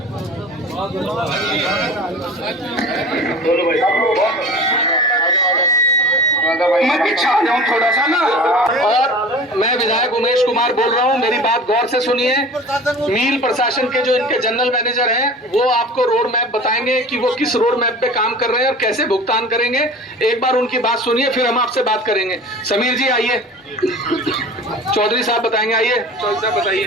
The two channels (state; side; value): normal; both; correlation 0.39